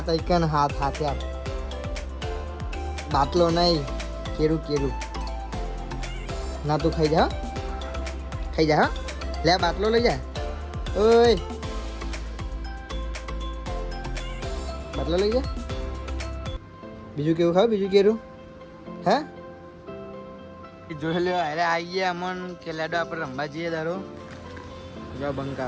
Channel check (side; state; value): both; identical; correlation 1.00